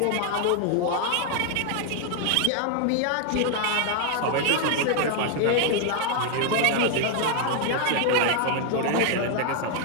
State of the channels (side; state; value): both; different; correlation 0.00